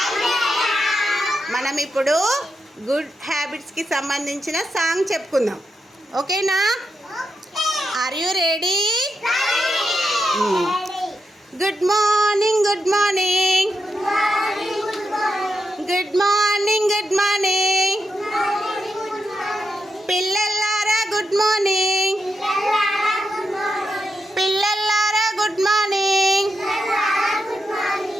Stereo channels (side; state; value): both; normal; correlation 0.85